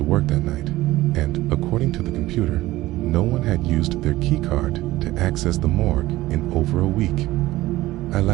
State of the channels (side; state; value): left; quieter; 17.1 dB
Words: work that night, and according to the computer, no one had used their key card to access the morgue in over a week. I